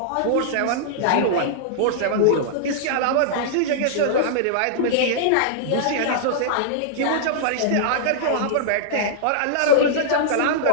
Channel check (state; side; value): different; both; correlation -0.01